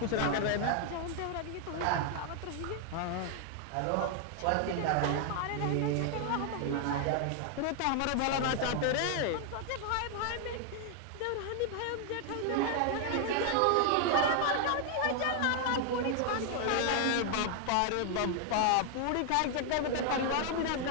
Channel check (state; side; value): different; both; correlation 0.00